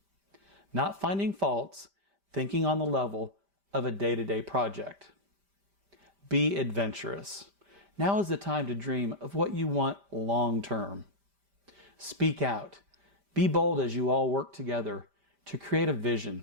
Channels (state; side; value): late; left; 5.1 ms